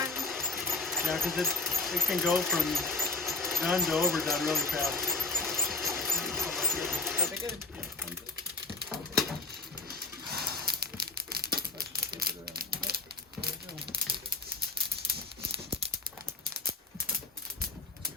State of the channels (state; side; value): quieter; right; 3.5 dB